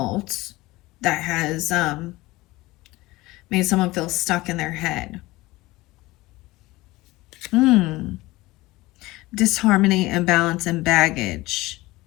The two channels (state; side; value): quieter; right; 19.8 dB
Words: that has made someone feel stuck in their head. Disharmony, imbalance, and baggage.